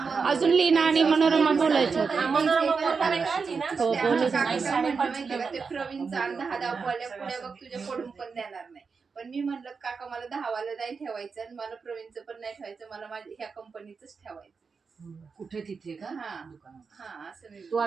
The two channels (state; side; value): quieter; left; 5.2 dB